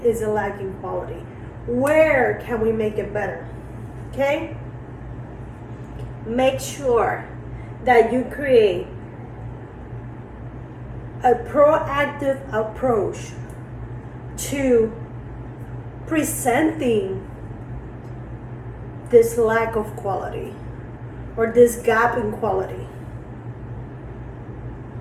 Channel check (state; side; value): identical; both; correlation 1.00